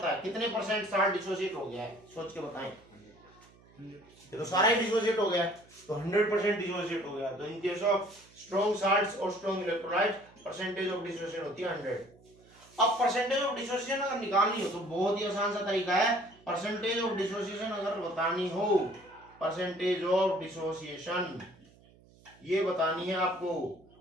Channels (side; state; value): right; noise; hum, 27 dB below the sound